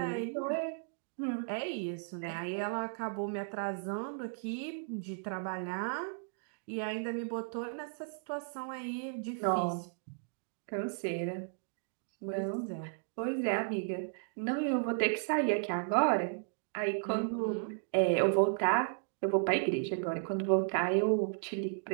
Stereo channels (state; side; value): silent; left; digital silence